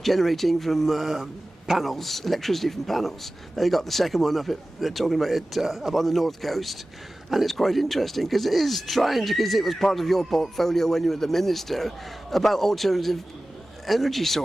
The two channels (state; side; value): normal; both; correlation 0.97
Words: generating from panels, electricity from panels. They got the second one up. They're talking about it up on the north coast, and it's quite interesting because it is trying to, because it was part of your portfolio when you were the minister, about alternative energy